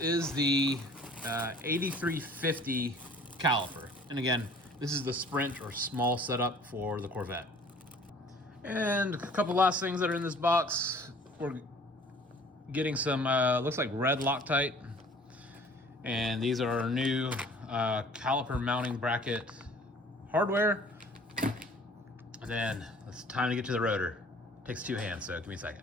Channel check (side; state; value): both; normal; correlation 0.51